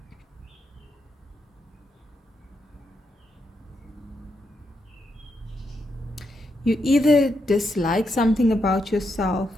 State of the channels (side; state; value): both; normal; correlation 0.82